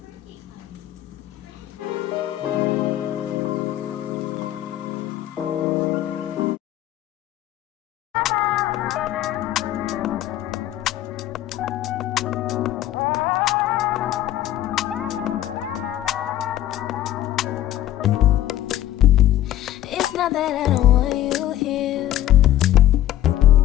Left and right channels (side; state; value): right; quieter; 13.2 dB